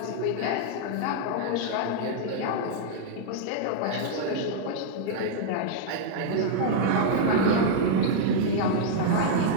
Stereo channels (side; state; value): both; different; correlation -0.01